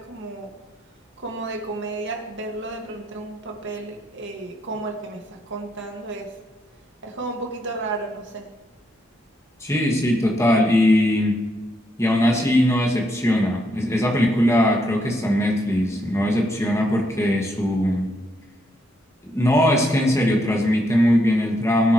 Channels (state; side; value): normal; both; correlation 0.77